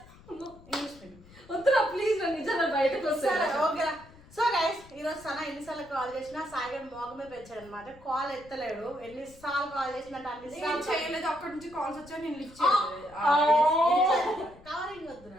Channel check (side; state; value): left; noise; rumble, 23 dB below the sound